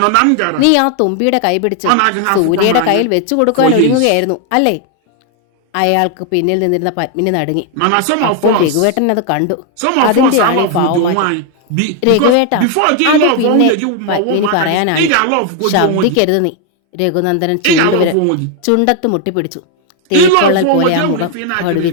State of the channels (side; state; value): both; different; correlation 0.00